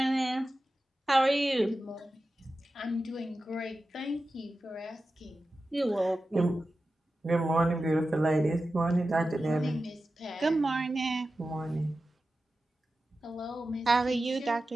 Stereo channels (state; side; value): normal; both; correlation 0.93